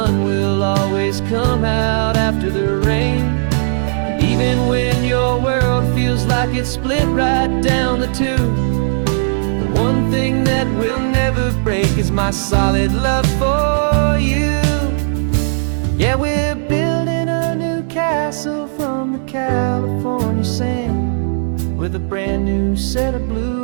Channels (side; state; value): left; silent; digital silence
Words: will always come out after the rain. Even when your world feels like it's split right down the two, the one thing that will never break is my solid love for you. Yeah, we're building a new castle from the California sand, with a brand new set of